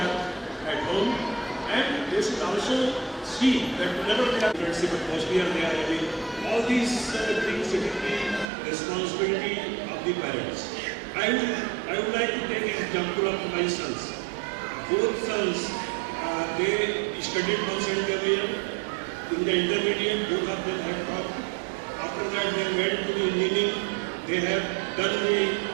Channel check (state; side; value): drops out; left; at 8.5 s